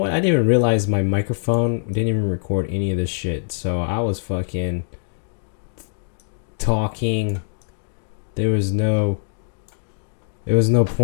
I didn't even realize my microphone didn't even record any of this shit. So I was fucking talking. There was no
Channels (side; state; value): right; silent; digital silence